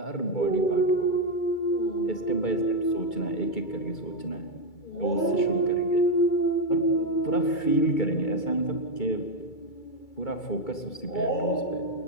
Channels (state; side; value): late; right; 2.3 ms